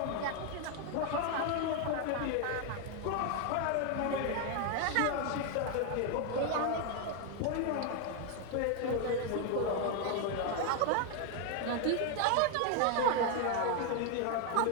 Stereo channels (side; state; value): both; different; correlation 0.01